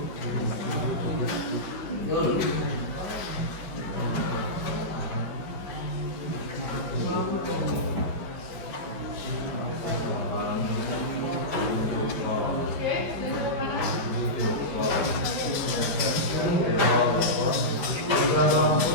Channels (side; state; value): right; late; 5.1 ms